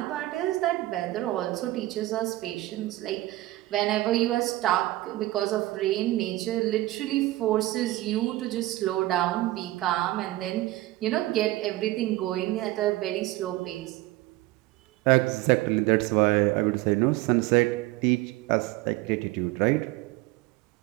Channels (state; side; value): quieter; left; 17.6 dB